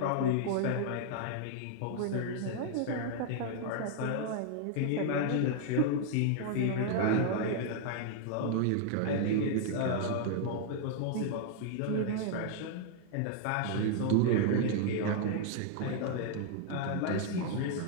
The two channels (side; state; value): both; different; correlation 0.00